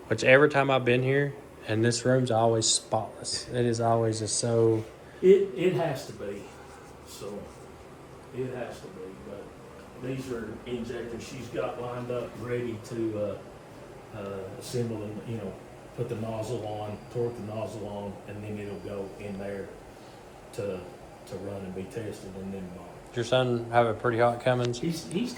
Which every time I've been here, and this room's always spotless. It is always just so. It has to be. So it has to be. But these are injectors she's got lined up, ready to assemble and put the nozzle on, torque the nozzle on, and then it'll go in there to run and be tested, and then Does your son have a pretty hot Cummins? he's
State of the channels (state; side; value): identical; both; correlation 1.00